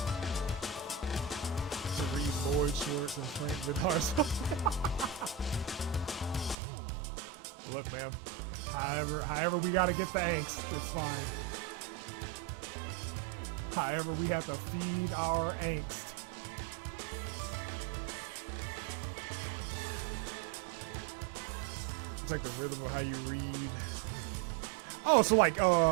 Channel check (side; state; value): left; drops out; at 6.6 s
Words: To read Lloyd Schwartz and Frank Vidar's. Look, man. However we gotta get the angst, it's fine. However we have to feed our angst. It's like the rhythm of how you read. Oh, so like a